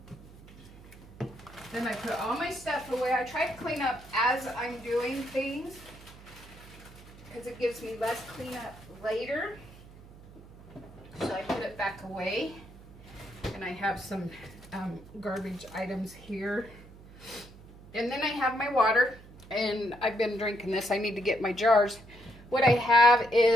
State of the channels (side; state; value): right; noise; hum, 20 dB below the sound